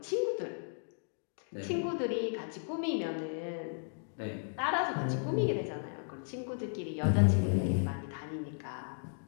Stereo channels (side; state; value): right; silent; digital silence